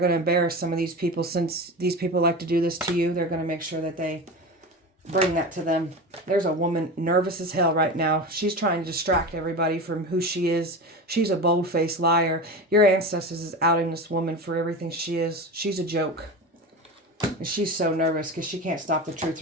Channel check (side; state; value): both; normal; correlation 0.27